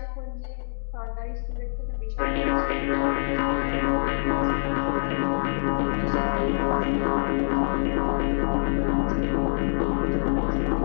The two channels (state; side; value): silent; right; digital silence